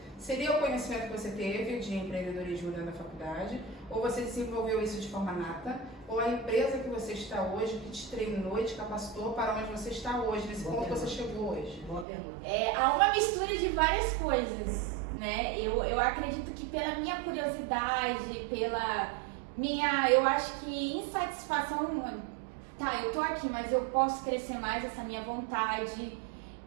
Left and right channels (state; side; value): drops out; left; at 12.1 s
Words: Seria o conhecimento que você teve de empreendedorismo dentro da faculdade? Ou você desenvolveu isso de forma nata? Ou a empresa que você está hoje, que te treinou e te capacitou para onde você está hoje, nesse ponto que você chegou hoje? Boa pergunta. Há uma mistura de várias coisas, né? Eu acredito que pela minha curiosidade, pela minha, eu acho que insatisfação, tá, eu tô aqui, mas eu posso crescer mais, essa minha vontade,